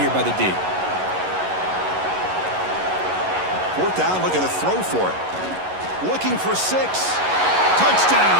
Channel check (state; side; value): late; left; 11 ms